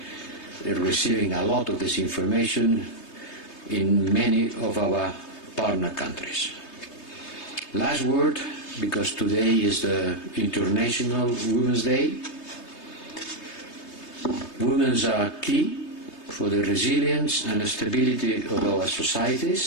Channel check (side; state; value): right; late; 3.3 ms